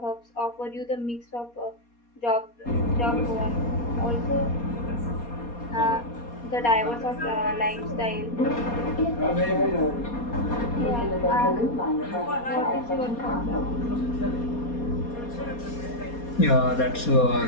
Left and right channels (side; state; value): right; late; 4.2 ms